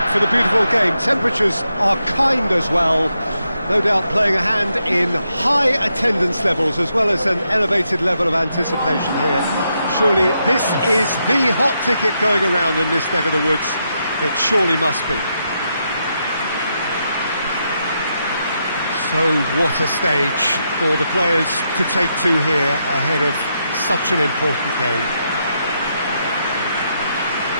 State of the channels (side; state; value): both; inverted; correlation -0.82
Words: for the beautiful game. Temperatures are kind as well. No doubt playing a hand in high attendance levels as well as an elevated level of anticipation here. Surely this is the hot ticket going around in this neck of the woods. It surely must be. So what a stage for the players to take to here ahead of such an important game.